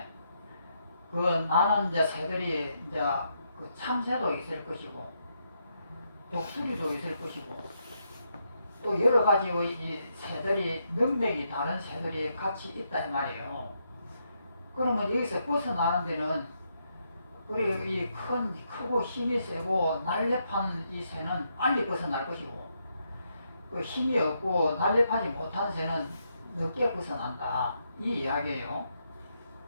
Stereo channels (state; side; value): inverted; both; correlation -0.79